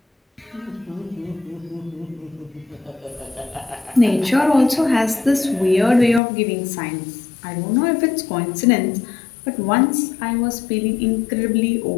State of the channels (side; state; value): right; drops out; at 6.2 s